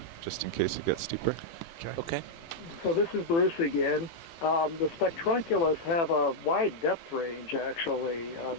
just in case it gets steeper. Okay. So this is Bruce again. The Spectrunculus have a wide depth range, actually.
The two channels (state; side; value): late; right; 18 ms